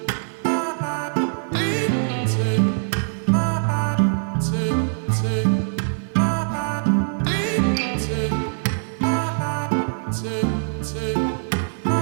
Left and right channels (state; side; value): silent; left; digital silence